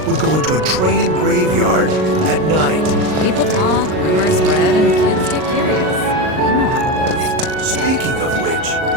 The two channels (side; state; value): left; late; 38 ms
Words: would go into a train graveyard at night. People talk, rumors spread, and kids get curious. Speaking of which,